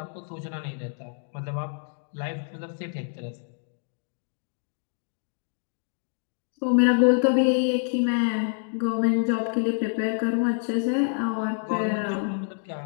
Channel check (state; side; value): silent; right; 58 dB below the other